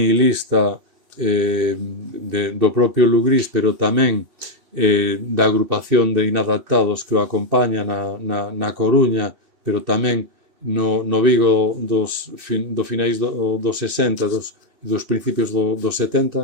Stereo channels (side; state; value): left; late; 2.6 ms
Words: do propio Lugrís, pero tamén da agrupación de inadaptados que o acompaña na Coruña, pero tamén no Vigo do finais dos 60 dos principios dos